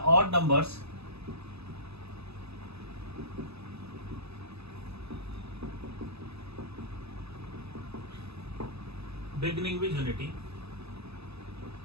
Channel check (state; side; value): late; left; 0.79 ms